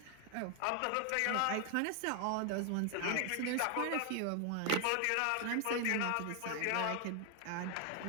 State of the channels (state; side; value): different; both; correlation 0.00